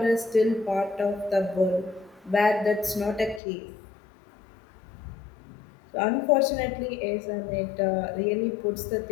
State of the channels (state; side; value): drops out; right; at 3.4 s